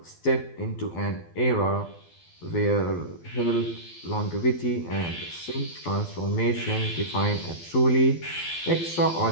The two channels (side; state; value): right; late; 12 ms